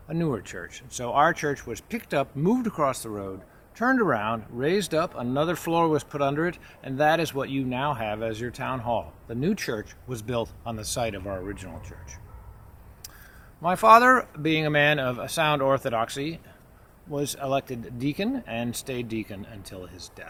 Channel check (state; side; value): identical; both; correlation 1.00